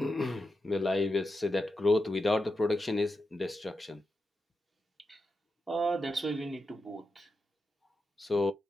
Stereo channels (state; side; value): normal; both; correlation 0.88